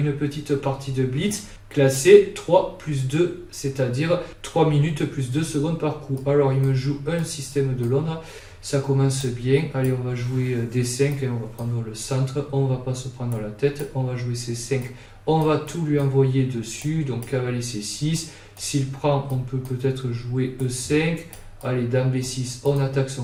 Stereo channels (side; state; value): both; identical; correlation 1.00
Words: petite partie de Blitz classée 3 plus 2, c'est-à-dire 3 minutes plus 2 secondes par coup. Alors il me joue un système de Londres, ça commence bien. Allez, on va jouer D5 et on va prendre le centre, on va pas se prendre la tête, on va jouer C5, on va tout lui envoyer dessus, donc cavalier C6, s'il prend on peut peut-être jouer E5. Allez, dame B6, on attaque